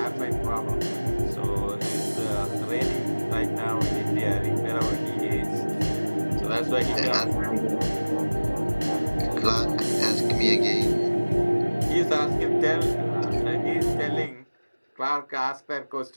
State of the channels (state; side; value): inverted; both; correlation -1.00